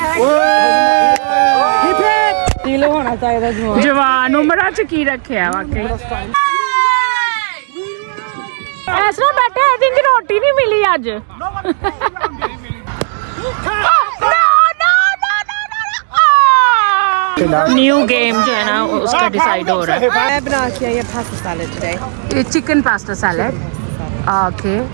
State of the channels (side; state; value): left; silent; 67 dB below the other